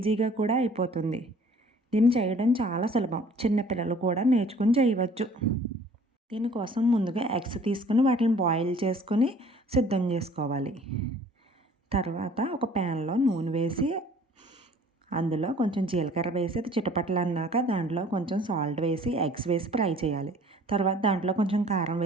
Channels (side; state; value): both; normal; correlation 0.52